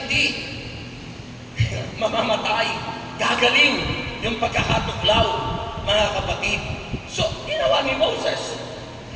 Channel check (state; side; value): identical; both; correlation 1.00